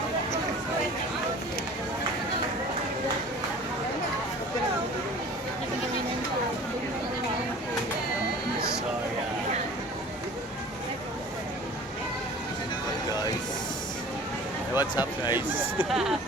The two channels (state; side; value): normal; both; correlation 0.44